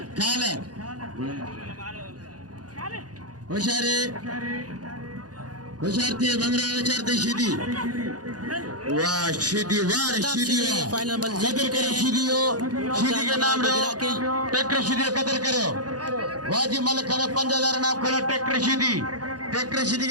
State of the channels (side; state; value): left; late; 0.68 ms